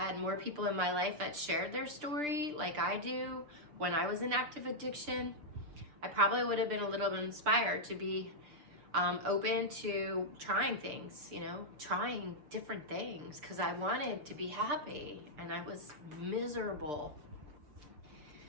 more people in my life that shared their story like I do when I was in active addiction, I probably would have been a little bit inspired to be open to trying things, you know, trying different things, because I wanted to be happy and I was miserable.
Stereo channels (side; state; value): left; late; 6.7 ms